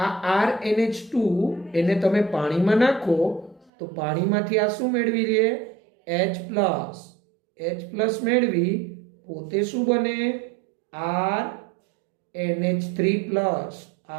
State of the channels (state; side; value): drops out; left; at 3.7 s